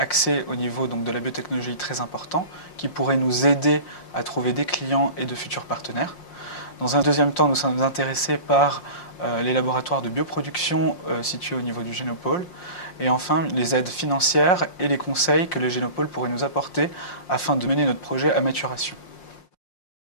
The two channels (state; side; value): late; right; 5.6 ms